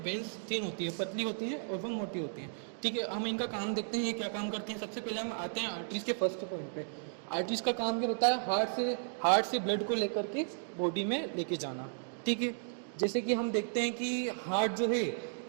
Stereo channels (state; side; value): silent; left; digital silence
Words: वेन्स तीन होती है, पतली होती हैं और वो मोटी होती हैं। ठीक है, हम इनका काम देखते हैं ये क्या काम करते हैं। सबसे पहले हम आते हैं आर्टरीज के फर्स्ट पॉइंट पे। आर्टरीज का काम क्या होता है? हार्ट से ब्लड को लेकर के बॉडी में लेके जाना। ठीक है, जैसे कि हम देखते हैं कि हार्ट जो है